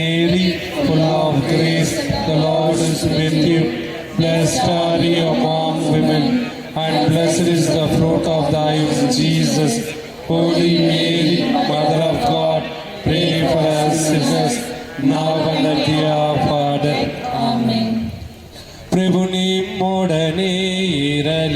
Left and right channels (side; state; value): both; identical; correlation 1.00